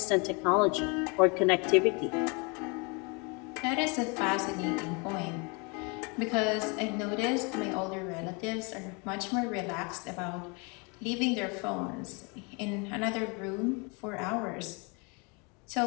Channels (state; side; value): quieter; right; 31.3 dB